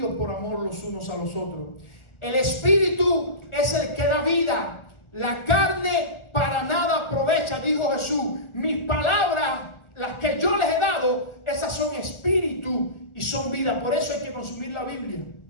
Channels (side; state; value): right; late; 1.4 ms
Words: por amor los unos a los otros. El espíritu es el que da vida, la carne para nada aprovecha, dijo Jesús. Mis palabras, las que yo les he dado, esas son espíritu y son vida. Por eso hay que consumir la Biblia,